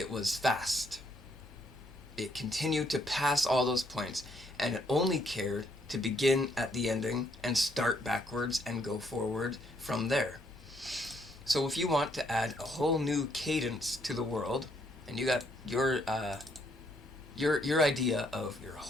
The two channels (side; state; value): both; normal; correlation 0.71